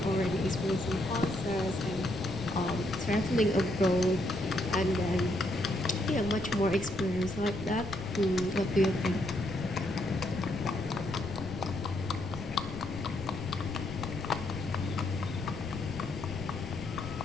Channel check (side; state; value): left; noise; rumble, 11 dB below the sound